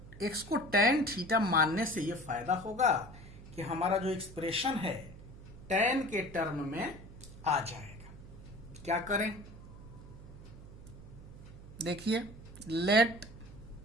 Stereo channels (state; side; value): noise; right; hum, 16 dB below the sound